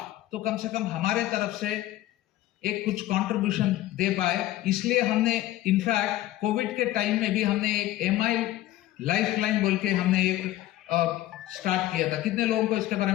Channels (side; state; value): right; quieter; 14.9 dB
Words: तो कम से कम हमारे तरफ से एक कुछ कंट्रीब्यूशन दे पाए। इसलिए हमने इनफैक्ट कोविड के टाइम में भी हमने एक MI लाइफलाइन बोल के हमने एक स्टार्ट किया था। कितने लोगों को इसके बारे